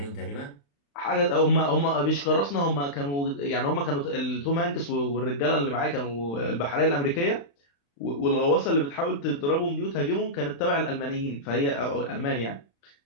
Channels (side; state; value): right; late; 35 ms